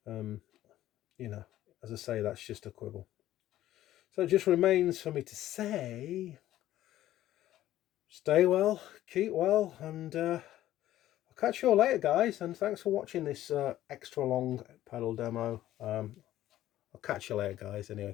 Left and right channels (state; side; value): quieter; right; 13.7 dB